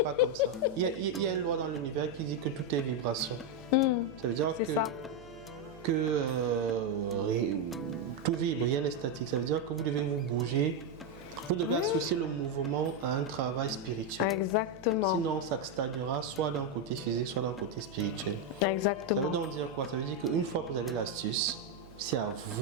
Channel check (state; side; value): noise; right; hum, 22 dB below the sound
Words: pas comme ça. Il y a une loi dans l'univers qui dit que tout est vibration. Ça veut dire que tout vibre, rien n'est statique. Ça veut dire que vous devez vous bouger. Vous devez associer le mouvement à un travail spirituel. Exactement. Sinon, ça stagnera soit d'un côté physique, soit d'un côté spirituel. Exactement. Ça veut donc dire quoi? Ça veut dire qu'une fois que vous avez l'astuce, c'est à